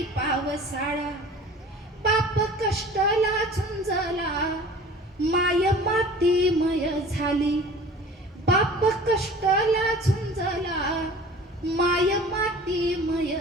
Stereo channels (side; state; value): both; normal; correlation 0.44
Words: पावसाळा. बाप कष्टाला झुंजला माय मातीमय झाली, बाप कष्टाला झुंजला माय मातीमय